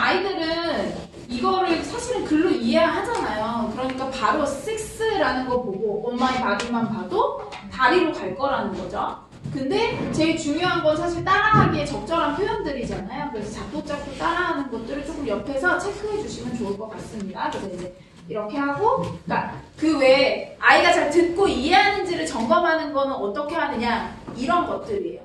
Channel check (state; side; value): identical; both; correlation 1.00